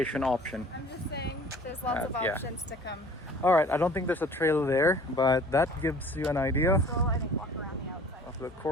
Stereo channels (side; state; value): both; normal; correlation 0.48